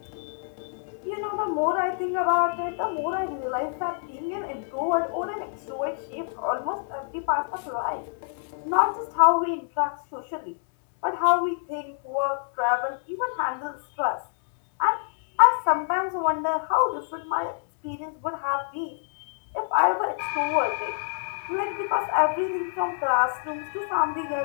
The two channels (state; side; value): silent; right; digital silence